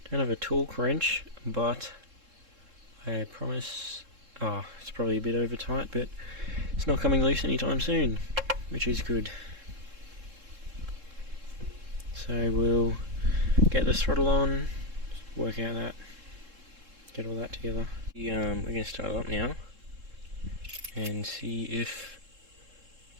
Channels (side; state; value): left; late; 3.7 ms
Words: Don't have a torque wrench, but I promise, it's probably a bit over tight, but it's not coming loose anytime soon, which is good. So we'll get the throttle on, work out that, get all that together. We're going to start it up now and see if